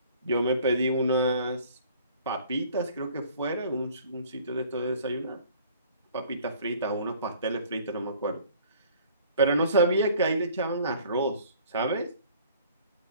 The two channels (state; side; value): inverted; both; correlation -0.53